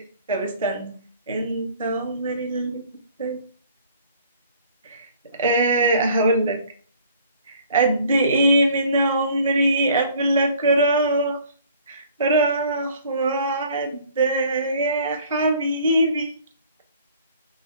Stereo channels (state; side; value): inverted; both; correlation -0.55